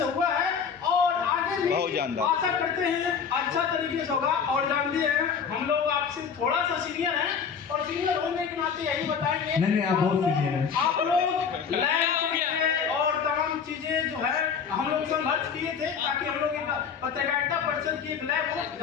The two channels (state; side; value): quieter; right; 6.6 dB